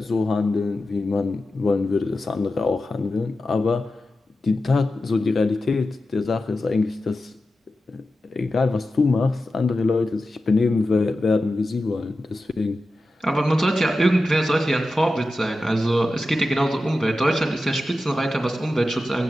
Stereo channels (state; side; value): normal; both; correlation 0.92